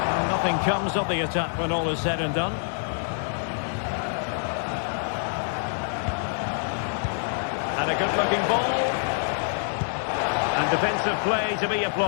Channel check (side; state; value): right; silent; 56 dB below the other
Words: Nothing comes of the attack when all is said and done. And a good-looking ball. And defensive play to be